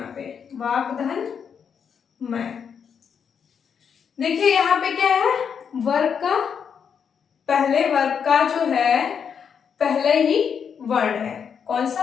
पे वाक धन मैं। देखिए यहाँ पे क्या है, वर्ग का, पहले वर्ग का जो है पहले ही वर्ण है, कौन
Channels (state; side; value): quieter; right; 7.1 dB